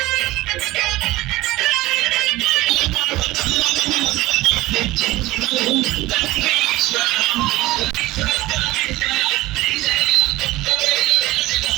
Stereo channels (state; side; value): quieter; left; 18.2 dB